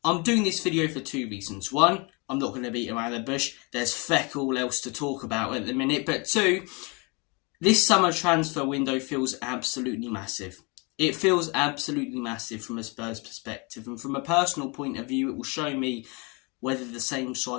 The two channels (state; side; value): quieter; right; 30.1 dB